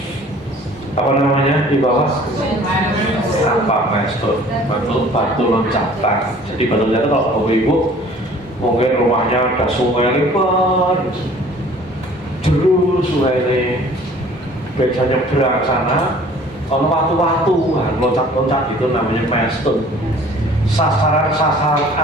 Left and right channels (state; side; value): normal; both; correlation 0.51